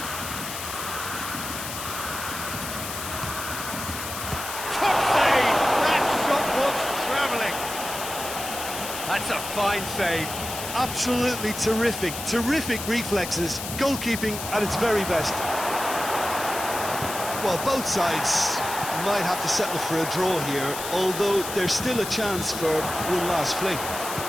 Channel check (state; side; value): noise; left; hiss, 7 dB below the sound